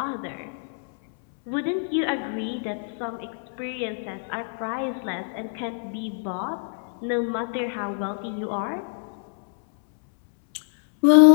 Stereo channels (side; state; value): right; silent; 62 dB below the other